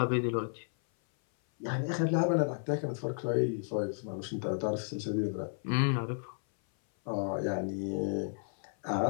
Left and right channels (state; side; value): silent; right; 56 dB below the other